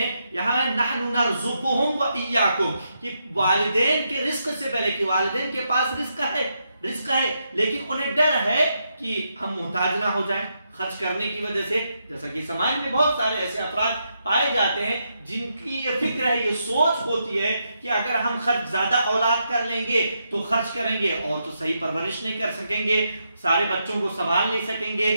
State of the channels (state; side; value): inverted; both; correlation -0.82